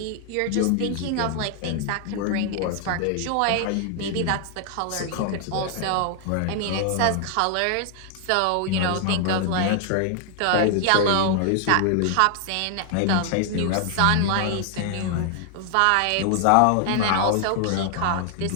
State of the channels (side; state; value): both; different; correlation 0.00